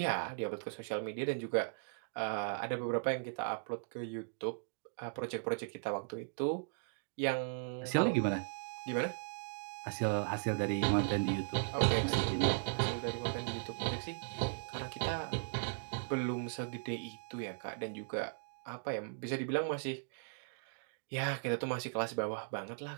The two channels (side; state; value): left; silent; digital silence